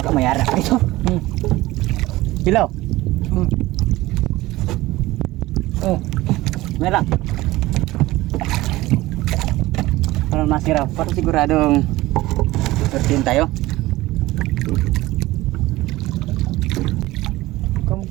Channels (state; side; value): quieter; left; 18.2 dB